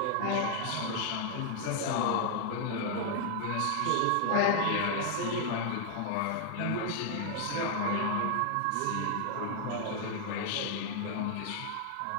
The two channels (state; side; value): different; both; correlation 0.00